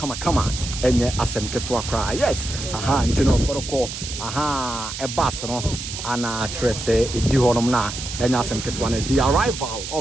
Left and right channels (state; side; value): noise; right; hiss, 8 dB below the sound